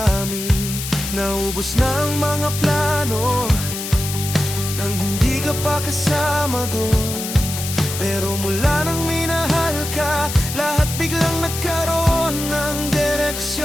Naubos na ang mga plano nang hindi ka pa kasama doon. Pero mula nang minahal ka, lahat biglang nagkaroon ng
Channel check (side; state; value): left; noise; hiss, 6 dB below the sound